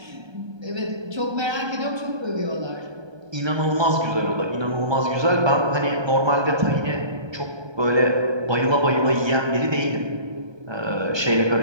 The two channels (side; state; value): left; late; 1.2 ms